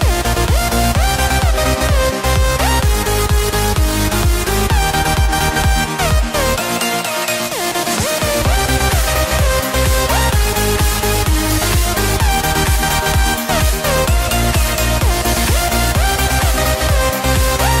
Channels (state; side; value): identical; both; correlation 1.00